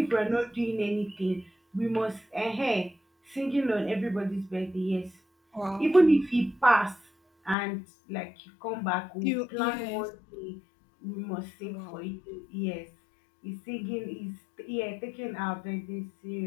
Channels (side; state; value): right; drops out; at 7.6 s